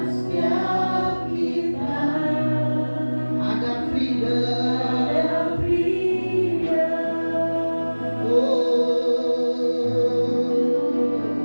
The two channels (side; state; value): both; inverted; correlation -1.00